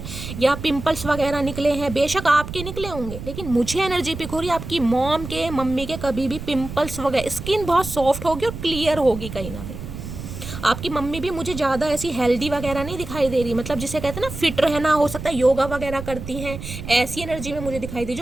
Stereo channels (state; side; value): noise; right; rumble, 9 dB below the sound